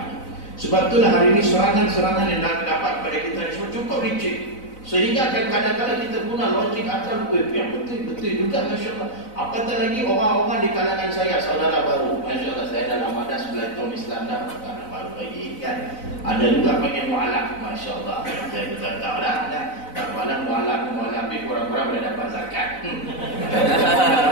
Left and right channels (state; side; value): late; right; 4.0 ms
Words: Sebab itulah hari ini serangan-serangan yang dapat kepada kita ini semua cukup licik. Sehingga kadang-kadang kita guna logik akal, yang betul juga, Masya Allah. Apatah lagi orang-orang di kalangan saya, saudara baru, Masya Allah, saya dalam ada 11 tahun Islam dah, bukan baru lagi kan. Ada juga panggil mu'alaf, Masya Allah. Saya betul tahu lah, tak malam mu'alaf ni kurang-kurang boleh dapat zakat.